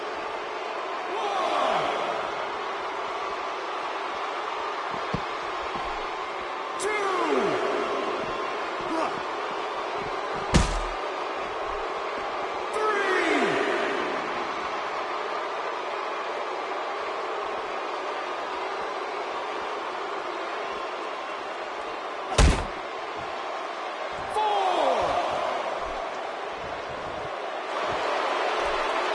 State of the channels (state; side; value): identical; both; correlation 1.00